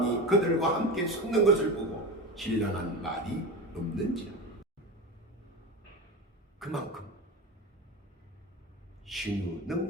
그들과 함께 섰는 것을 보고 신랄한 말이 없는지라. 그만큼 신유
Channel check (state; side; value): normal; both; correlation 0.25